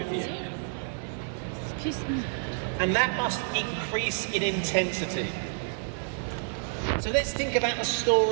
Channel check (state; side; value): silent; left; 57 dB below the other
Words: you. And that must increase in intensity. So let's think about a